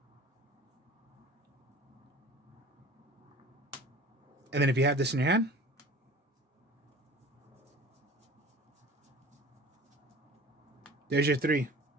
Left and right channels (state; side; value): normal; both; correlation 0.42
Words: And then if you have this in your hand, there's your 3.